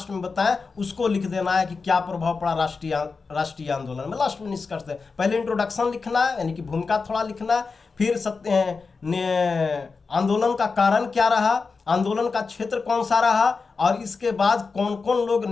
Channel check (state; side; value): quieter; right; 4.6 dB